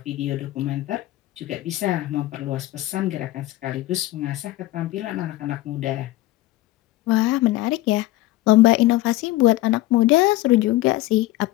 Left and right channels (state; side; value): quieter; right; 16.9 dB